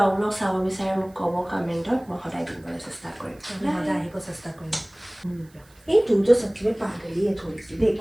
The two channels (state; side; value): noise; right; hiss, 30 dB below the sound